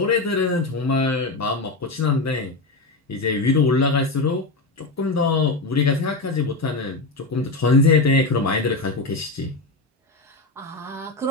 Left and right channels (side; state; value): right; quieter; 3.3 dB